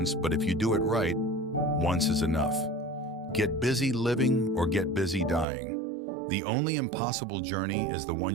but if you do it right, once is enough. Get busy living or get busy dying. The only impossible journey is the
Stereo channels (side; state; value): left; drops out; at 5.5 s